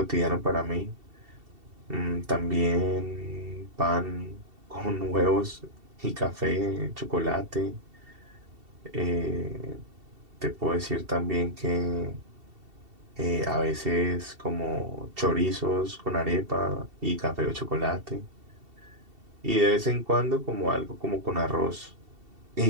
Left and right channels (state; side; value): late; left; 2.7 ms